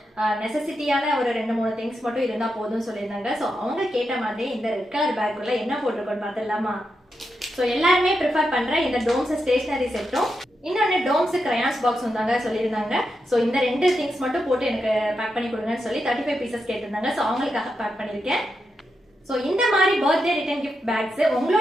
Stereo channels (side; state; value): both; normal; correlation 0.86